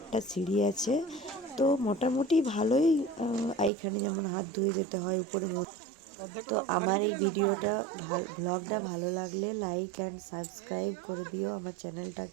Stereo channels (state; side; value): drops out; left; at 3.7 s